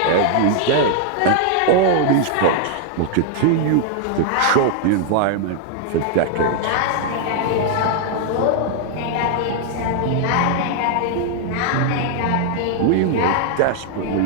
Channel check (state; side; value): different; both; correlation 0.00